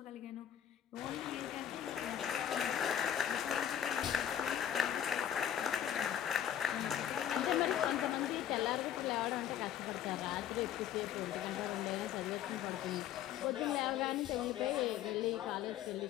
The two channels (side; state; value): right; quieter; 10.3 dB